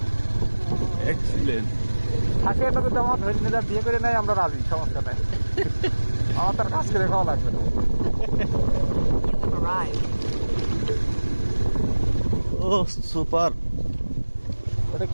এক্সিলেন্ট। থাকে এটা যদি আমার ধরে নিয়ে বিয়ে করে নেয় আমরা রাজি, সমস্যা নাই। আমার তার কাজ করে খাওয়া লাগবে না। ও সুপার। ওটা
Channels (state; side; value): inverted; both; correlation -1.00